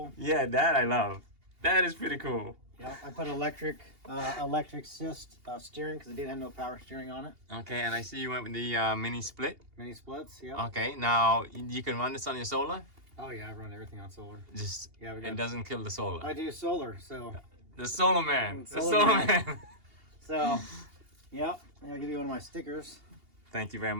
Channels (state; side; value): late; left; 2.8 ms